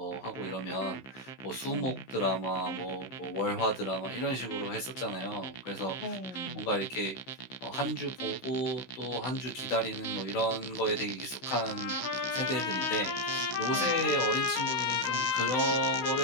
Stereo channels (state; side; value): late; right; 16 ms